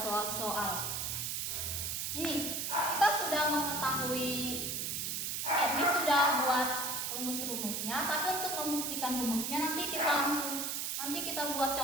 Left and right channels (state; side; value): noise; right; hiss, 1 dB below the sound